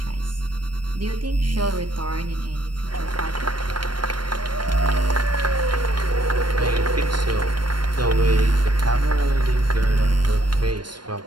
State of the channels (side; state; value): left; late; 0.71 ms